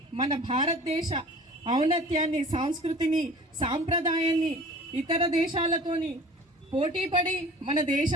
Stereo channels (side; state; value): both; normal; correlation 0.43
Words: మన భారతదేశ ఔన్నత్యాన్ని, సంస్కృతిని, సాంప్రదాయాన్ని ఇతర దేశాలతోని పోటీపడి మన